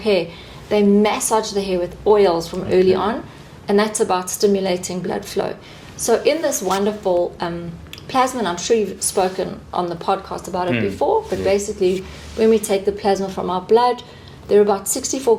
they massage the hair with oils from early on, and that's about stimulating blood flow. So in this wonderful plasma, and I'm sure you've spoken on the podcast about it before, but basically when we take the plasma from our blood, there are about 64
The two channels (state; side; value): identical; both; correlation 1.00